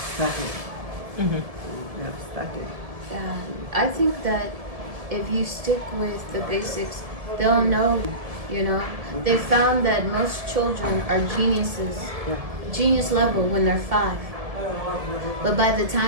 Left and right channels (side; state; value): left; late; 1.7 ms